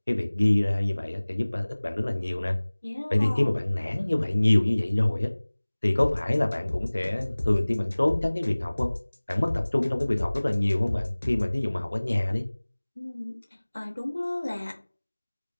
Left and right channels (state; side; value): inverted; both; correlation -1.00